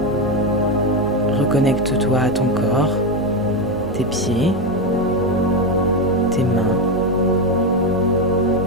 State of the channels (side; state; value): both; normal; correlation 0.10